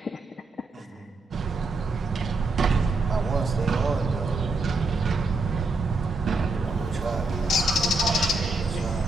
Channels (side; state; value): left; quieter; 3.2 dB